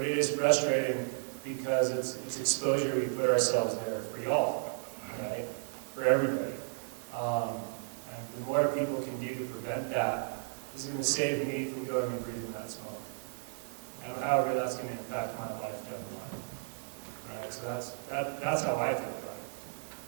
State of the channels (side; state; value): left; silent; digital silence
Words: it is frustrating because it's exposure we put ourselves there for y'all, right? For everybody. And the more people can do to prevent that is going to save me from going and breathing that smoke. And however that's going to impact my life down the line. Right? So that's how I feel about it.